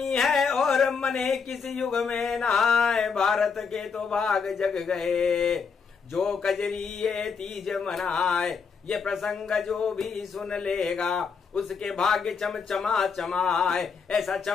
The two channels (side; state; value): right; quieter; 5.7 dB